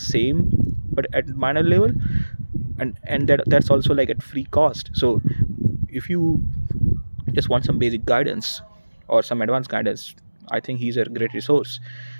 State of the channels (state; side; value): inverted; both; correlation -1.00